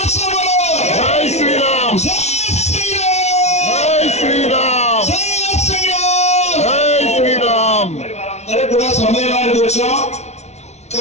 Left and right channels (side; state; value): right; late; 0.32 ms